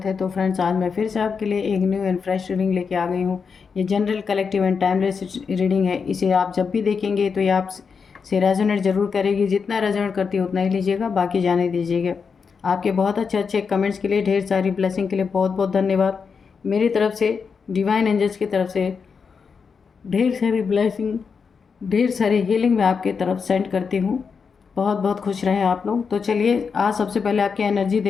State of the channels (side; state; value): right; quieter; 5.7 dB